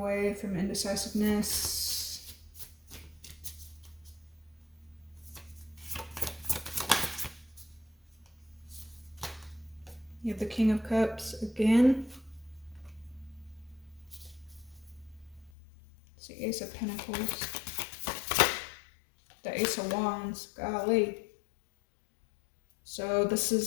from indecisiveness. You have the King of Cups again. It's the Ace of Pentacles. The Ace of Wands, golly. So this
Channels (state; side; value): drops out; right; at 15.5 s